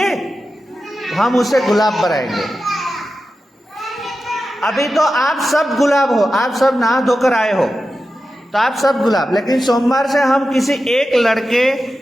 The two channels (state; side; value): normal; both; correlation 0.92